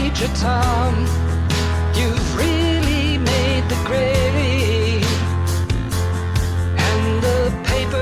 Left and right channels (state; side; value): identical; both; correlation 1.00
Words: Tom. You've really made the grade, and the